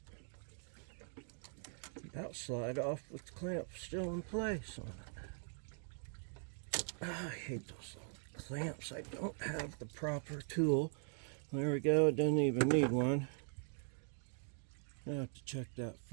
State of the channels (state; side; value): silent; left; 50 dB below the other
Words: about slide off with the clamp still in place on it. I hate those little clamps. I don't have the proper tool. There we go. It doesn't even need one. I have to check that